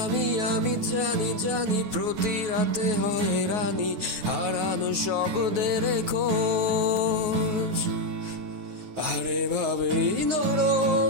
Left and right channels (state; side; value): late; left; 9.4 ms